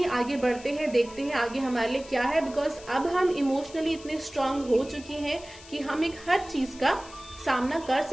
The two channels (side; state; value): left; noise; hiss, 19 dB below the sound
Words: आगे बढ़ते हैं, देखते हैं आगे हमारे लिए क्या है। बिकॉज अब हम इमोशनली इतने स्ट्रांग हो चुके हैं कि हम एक हर चीज का सामना कर